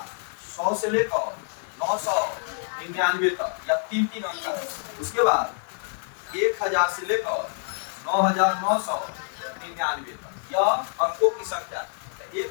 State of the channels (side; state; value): right; silent; 57 dB below the other